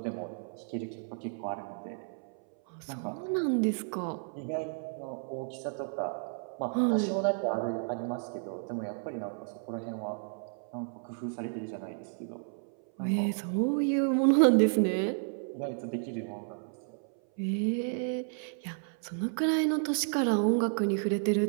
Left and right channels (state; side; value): silent; left; 56 dB below the other